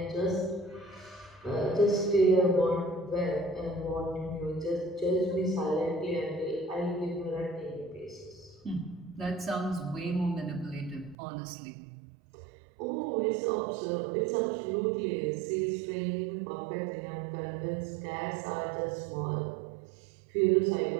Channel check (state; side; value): drops out; left; at 11.2 s